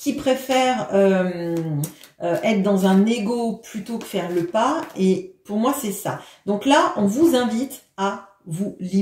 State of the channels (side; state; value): both; identical; correlation 1.00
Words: préfèrent être dans un ego plutôt que faire le pas. Et pour moi, c'est ça. Donc là, on vous invite à vous